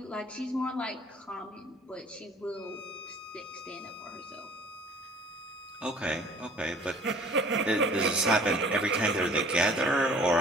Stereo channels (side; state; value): both; normal; correlation 0.51